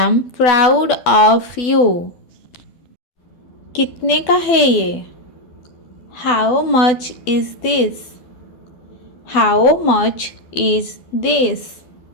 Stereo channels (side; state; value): right; late; 12 ms